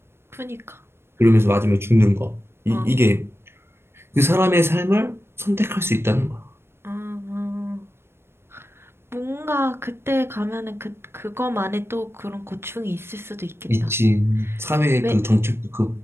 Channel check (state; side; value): late; left; 0.12 ms